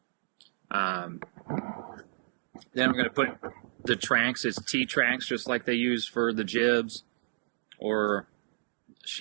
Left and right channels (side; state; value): left; silent; 57 dB below the other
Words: Then I'm going to put the tracks, it's T-tracks, just like they use for the jibs or